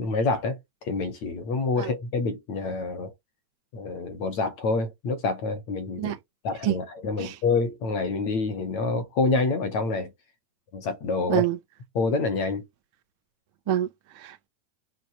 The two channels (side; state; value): right; late; 8.9 ms